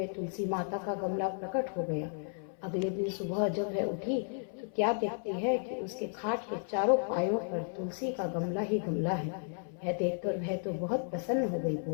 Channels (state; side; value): silent; right; 55 dB below the other